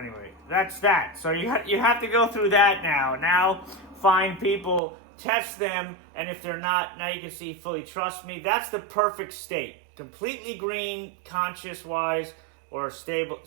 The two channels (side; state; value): left; drops out; at 4.8 s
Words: that's that. So you have to go through that now. Now, find people, test them, and if they're not, now you can see fully trust me. That's the perfect state. Completely green, conscious-wise, or